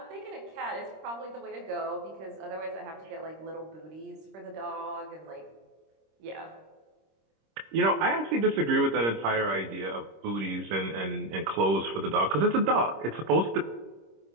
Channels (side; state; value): left; late; 26 ms